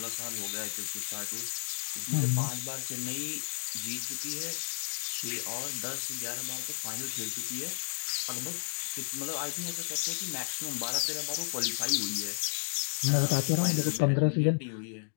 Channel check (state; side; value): silent; right; digital silence